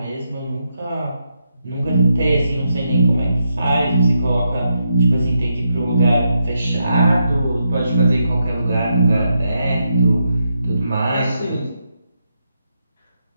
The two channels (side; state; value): both; inverted; correlation -0.82